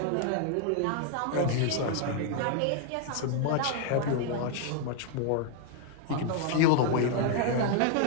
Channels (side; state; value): both; different; correlation 0.00